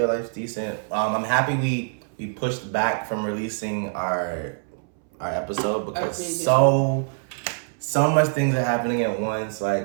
Life's decent. I'm happy we pushed back from releasing our episode because so much things are happening at once.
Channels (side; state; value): left; silent; 62 dB below the other